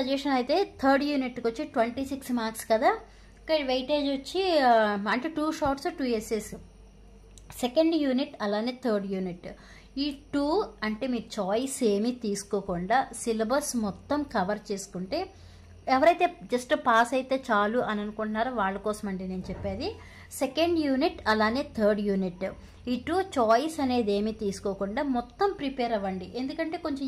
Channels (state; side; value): identical; both; correlation 1.00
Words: అయితే థర్డ్ యూనిట్కి వచ్చి 26 మార్క్స్ కదా, ఇక్కడ వెయిటేజ్ వచ్చి అంటే 2 షార్ట్స్ 2 ఎస్ఎస్. సెకండ్ యూనిట్ అలానే థర్డ్ యూనిట్, ఈ 2 అంటే మీరు చాయిస్ ఏమీ తీసుకోకుండా సిలబస్ మొత్తం కవర్ చేసుకుంటే, ఎవరైతే జస్ట్ పాస్ అయితే చాలు అని అనుకుంటున్నారో వాళ్ళ కోసం అండి నేను చెప్పేది. సెకండ్ యూనిట్ అలానే థర్డ్ యూనిట్, ఈ 2 చాయిస్ అనేది ఏమీ తీసుకోకుండా మొత్తం ప్రిపేర్ అవ్వండి. ఎందుకంటే కొంచెం